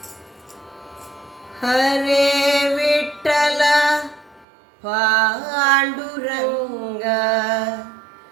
ಹರೇ ವಿಠಲ ಪಾಂಡುರಂಗ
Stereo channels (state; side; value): drops out; left; at 4.5 s